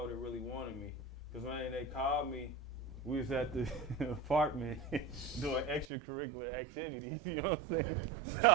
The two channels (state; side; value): drops out; left; at 5.9 s